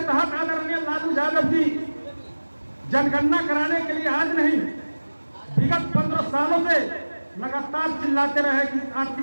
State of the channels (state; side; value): inverted; both; correlation -1.00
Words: तहत आदरणीय लालू यादव जी जनगणना कराने के लिए आज नहीं, विगत 15 सालों से लगातार चिल्लाते रहे कि